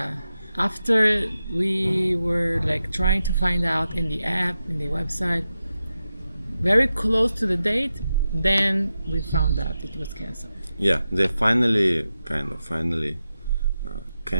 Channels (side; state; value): both; inverted; correlation -0.90